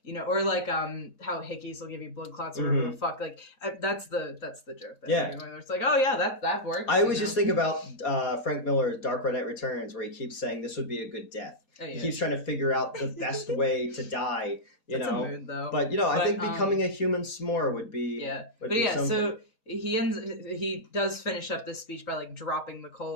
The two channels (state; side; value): normal; both; correlation -0.08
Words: like how hickeys will give you blood clots or whatever the fuck. Like that's the joke. It's like, oh yeah, that works. I always just think about Frank Miller's Dark Knight Returns, where he keeps saying this would be a good death. He keeps trying to figure out the best way to die. That's a mood, though. But I think becoming a human s'more would be something. So he does finish up this speech by like dropping the